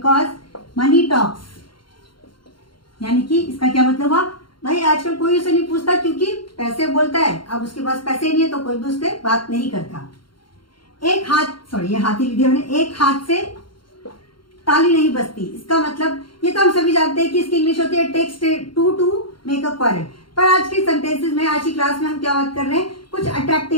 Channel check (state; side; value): late; right; 0.73 ms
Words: मनी टॉक्स, यानी कि इसका क्या मतलब हुआ, भाई आजकल कोई उसे नहीं पूछता क्योंकि पैसे बोलता है। अब उसके पास पैसे नहीं है तो कोई भी उससे बात नहीं करता। एक हाथ, सॉरी ये हाथ ही लिख दिया मैंने, एक हाथ से ताली नहीं बजती। इसका मतलब ये तो हम सभी जानते हैं कि इसकी इंग्लिश होती है takes two to make a quarrel, पर आज के सेंटेंसेस में, आज की क्लास में हम क्या बात कर रहे हैं, कुछ